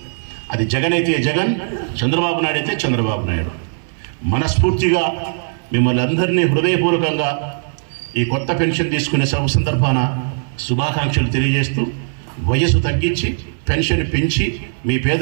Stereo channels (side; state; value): left; silent; 61 dB below the other